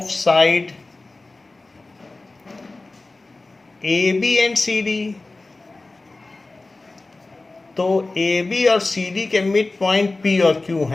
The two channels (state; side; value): quieter; right; 3.2 dB